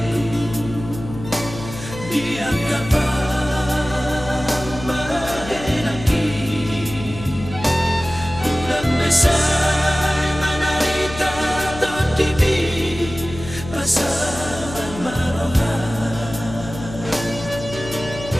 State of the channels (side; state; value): left; noise; hum, 12 dB below the sound